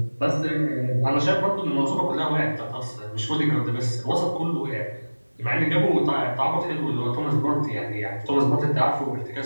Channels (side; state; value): both; inverted; correlation -1.00